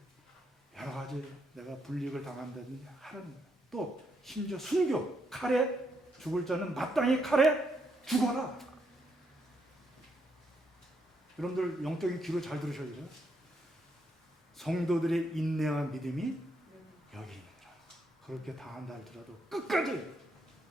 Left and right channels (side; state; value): both; normal; correlation 0.77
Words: 여러 가지 내가 불이익을 당한다든지 하는 거예요. 또 심지어 순교, 칼에 죽을 자는 마땅히 칼에 죽어라. 여러분들 영적인 귀로 잘 들으셔야죠. 성도들의 인내와 믿음이 여기 있느니라. 그렇게 당한다 할지라도 끝까지